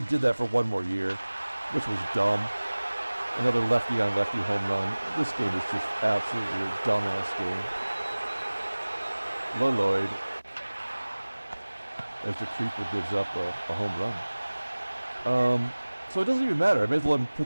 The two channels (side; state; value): both; inverted; correlation -1.00